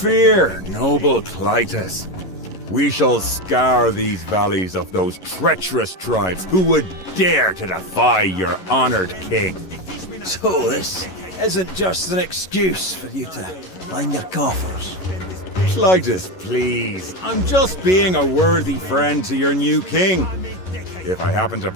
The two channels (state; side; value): late; right; 11 ms